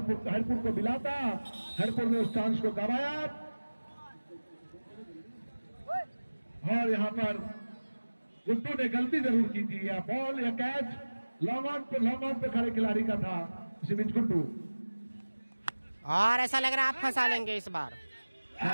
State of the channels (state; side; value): inverted; both; correlation -1.00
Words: को मिला था, हरिपुर ने उस चांस को गवाया। और यहाँ पर गुड्डू ने गलती जरूर की थी। या बॉल या कैच लॉन्ग ऑन पे खड़े खिलाड़ी का था, इसी बीच गुड्डू। और ऐसा लग रहा है आप फंसा लेंगे इस बार,